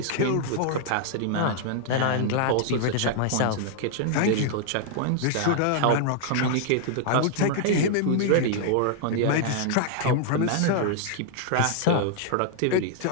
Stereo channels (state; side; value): different; both; correlation -0.01